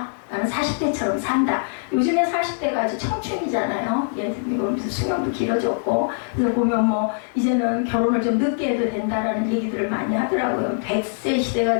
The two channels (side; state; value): right; silent; 64 dB below the other